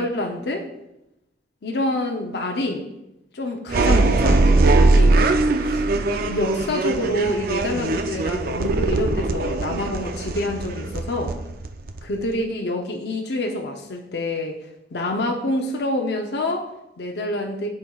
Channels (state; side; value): normal; both; correlation 0.59